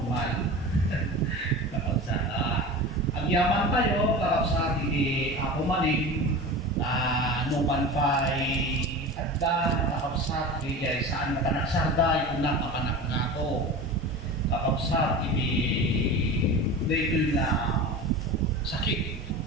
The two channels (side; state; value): both; normal; correlation 0.32